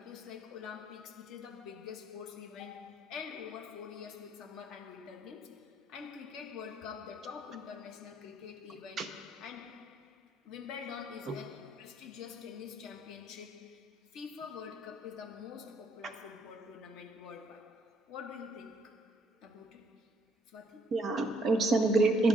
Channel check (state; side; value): normal; both; correlation 0.68